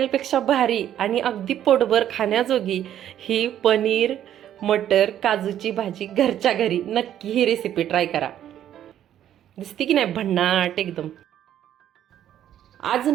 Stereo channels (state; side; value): quieter; left; 11.0 dB